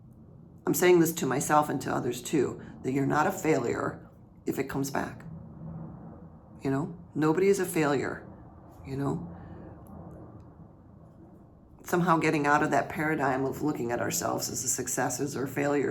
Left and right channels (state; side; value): identical; both; correlation 1.00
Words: I'm saying this to myself and to others too, that you're not a failure if it comes back. Nobody is a failure, Somehow getting out of that paradigm of looking at ourselves as successes or